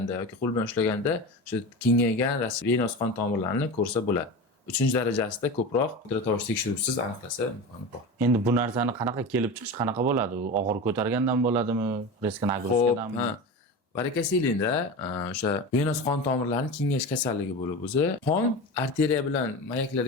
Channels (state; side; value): normal; both; correlation 0.27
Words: yoki qo'l bilan ushlaganda o'sha kengaygan venöz qon tomirlarini ko'rsa bo'ladi. 3-darajasida ko'proq ultratovush tekshiruvsiz aniqlasa imkoni bor. Endi bu narsani qanaqa kelib chiqish qanaqa bo'ladi? U og'ir ko'targandan bo'ladimi? Risk nagruzkadanmi? Varakasiylikda o'sha venöz qon tomirlarining kengayish kasalligi bo'lib o'zi qon arteriya bilan